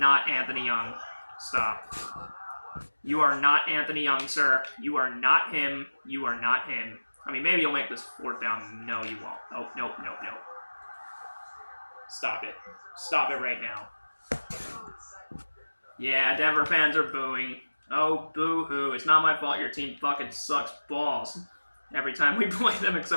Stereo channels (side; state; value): both; inverted; correlation -1.00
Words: Anthony Young. Stop. You are not Anthony Young, sir. You are not him. You are not him. I mean, maybe you'll make this 4th down. No, you won't. Oh, nope. Stop it. Stop it right now. Yeah, Denver fans are booing. Oh, boo-hoo. It's not my fault your team fucking sucks balls every time we play them